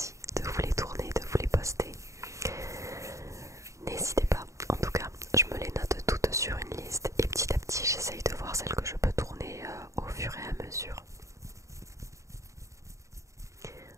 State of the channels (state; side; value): late; left; 0.15 ms